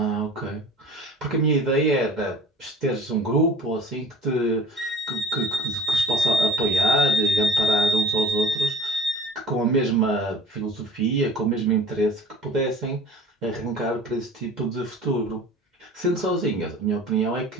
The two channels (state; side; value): normal; both; correlation 0.45